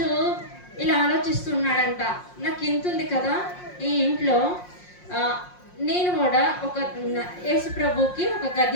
ఇలా ఆలోచిస్తున్నాడంట, నాకు ఇంత ఉంది కదా ఈ ఇంట్లో, నేను కూడా ఒక యేసు ప్రభుకి ఒక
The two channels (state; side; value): late; right; 5.6 ms